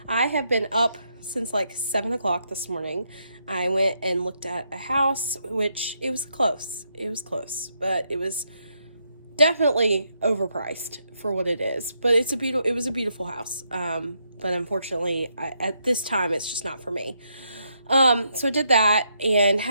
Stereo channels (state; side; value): inverted; both; correlation -0.78